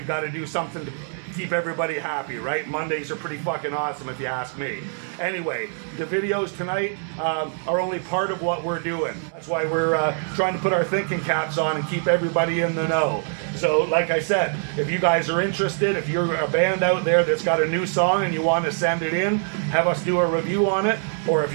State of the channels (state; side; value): silent; left; 57 dB below the other